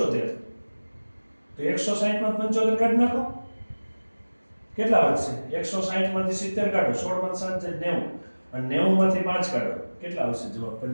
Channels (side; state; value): both; inverted; correlation -1.00